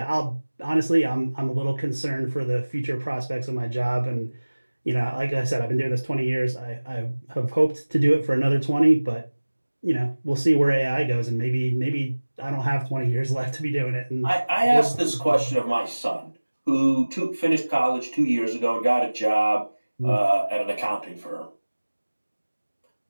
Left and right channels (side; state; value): both; inverted; correlation -1.00